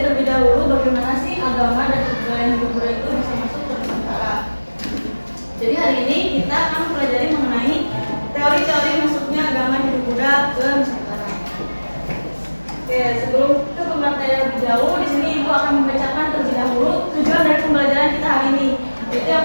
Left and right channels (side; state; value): both; inverted; correlation -1.00